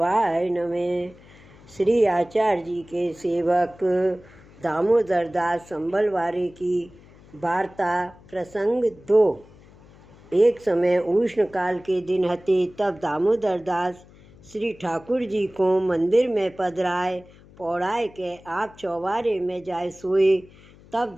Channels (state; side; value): noise; left; hum, 24 dB below the sound